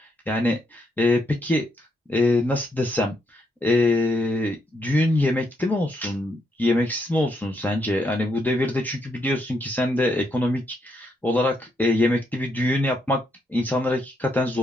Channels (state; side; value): normal; both; correlation 0.77